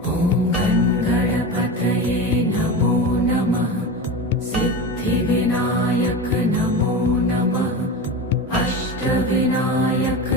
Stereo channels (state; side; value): normal; both; correlation 0.26